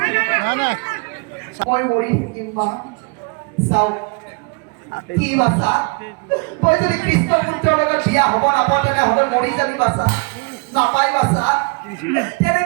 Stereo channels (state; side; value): quieter; left; 32.8 dB